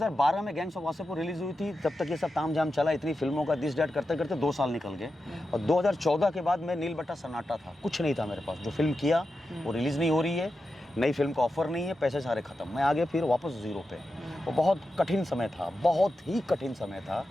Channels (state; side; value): normal; both; correlation 0.90